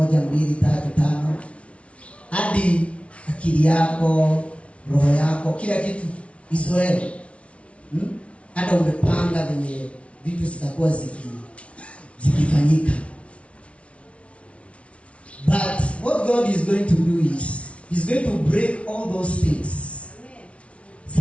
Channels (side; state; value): right; late; 0.062 ms